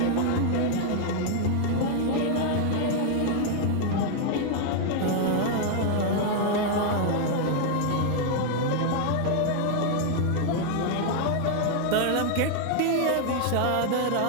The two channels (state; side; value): different; both; correlation 0.00